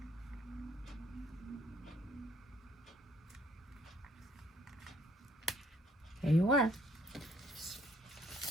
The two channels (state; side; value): normal; both; correlation 0.65